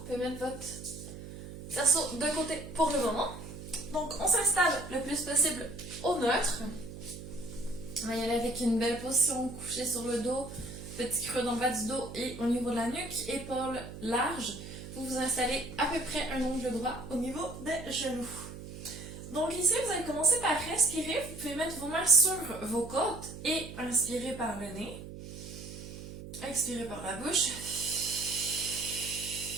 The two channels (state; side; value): noise; right; hum, 12 dB below the sound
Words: pouvez mettre votre cerceau de côté pour le moment. Donc on s'installe le plus possible au neutre. On va y aller avec une belle position, couché sur le dos, petit creux dans le bas du dos et au niveau de la nuque, épaules larges. Vous vous installez à peu près un angle droit au niveau des genoux. Donc ici, vous allez commencer par respirer. Vous pouvez mettre vos mains sur vos côtes et inspirer par le nez. Expirez par la bouche.